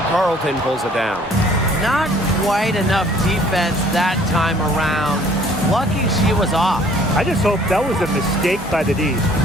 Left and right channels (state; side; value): normal; both; correlation 0.56